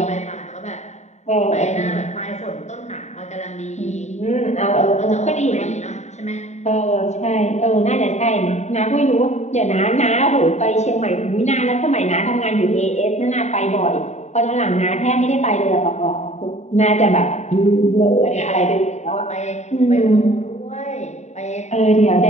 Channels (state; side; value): late; right; 0.33 ms